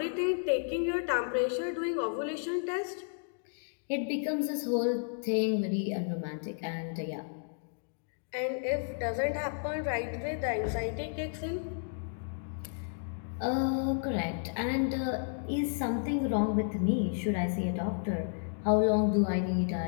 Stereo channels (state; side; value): silent; right; digital silence